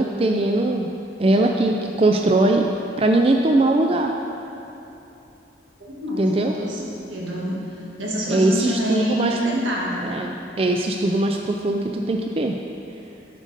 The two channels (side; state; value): both; normal; correlation 0.66